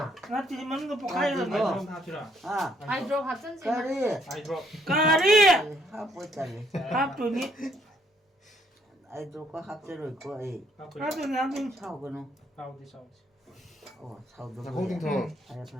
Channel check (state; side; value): normal; both; correlation 0.68